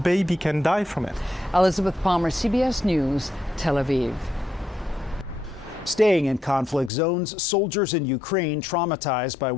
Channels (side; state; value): right; drops out; at 6.9 s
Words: baby can die from it. Elizabeth Palmer, CBS News, Tel Aviv. Staying in conflict zones, soldiers in Ukraine, traumatized by